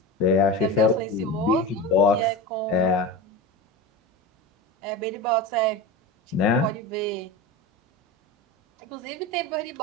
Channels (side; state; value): both; normal; correlation 0.25